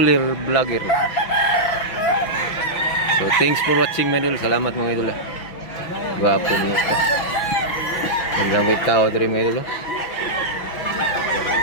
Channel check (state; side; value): late; right; 6.0 ms